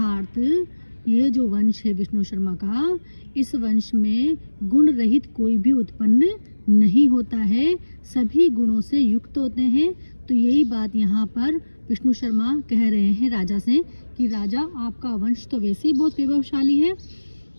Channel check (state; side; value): inverted; both; correlation -1.00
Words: ये जो वंश है विष्णु शर्मा का, इस वंश में गुण रहित कोई भी उत्पन्न नहीं होता है, सभी गुणों से युक्त होते हैं। तो यही बात यहाँ पर विष्णु शर्मा कह रहे हैं राजा से कि राजा, आपका वंश तो वैसे ही बहुत वैभवशाली है,